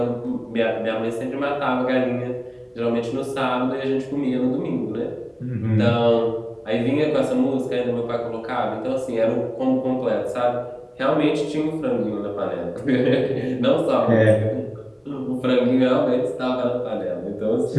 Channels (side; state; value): both; identical; correlation 1.00